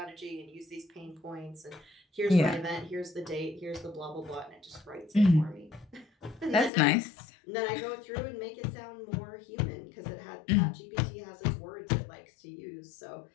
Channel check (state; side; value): drops out; right; at 6.7 s